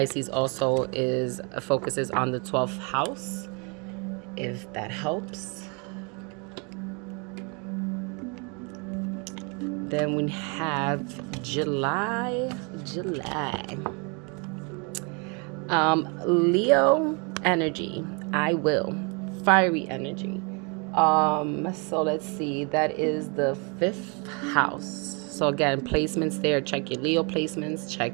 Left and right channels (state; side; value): quieter; left; 33.1 dB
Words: also focuses on the 12th house, if that helps. Then we have July. Leo energy. I will. Fiery energy. So let's see. That is the 5th house. So again, placements there. Check your Leo placements. Check